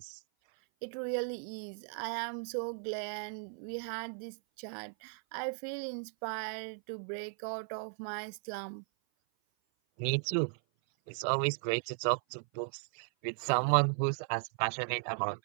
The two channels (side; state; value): left; silent; 53 dB below the other